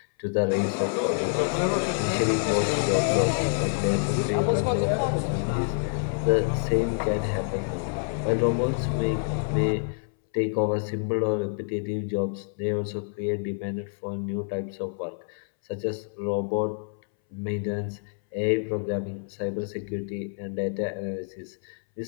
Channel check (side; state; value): right; silent; 60 dB below the other